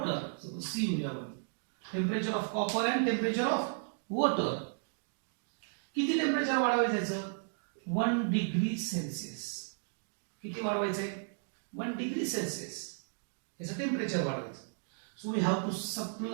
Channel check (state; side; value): silent; left; digital silence